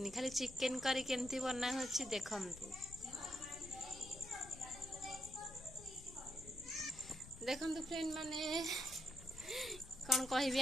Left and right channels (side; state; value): left; noise; rumble, 17 dB below the sound